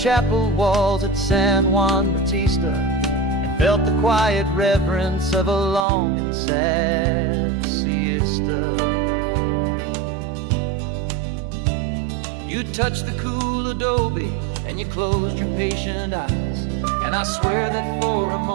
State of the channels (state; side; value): drops out; left; at 5.9 s